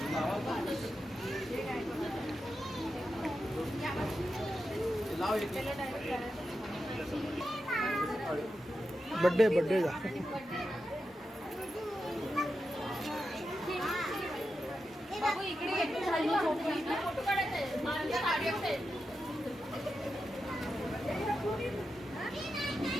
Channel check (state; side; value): normal; both; correlation 0.89